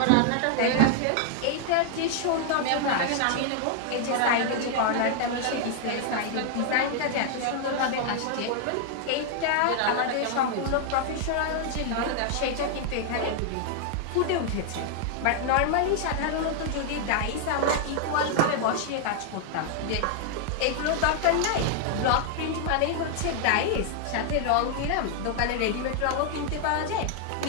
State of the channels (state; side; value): different; both; correlation 0.00